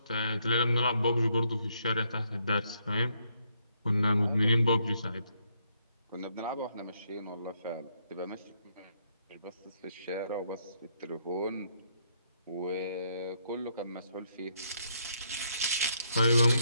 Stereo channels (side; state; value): both; inverted; correlation -0.74